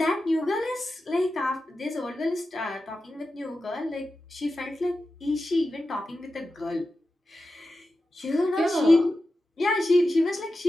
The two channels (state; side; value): normal; both; correlation 0.92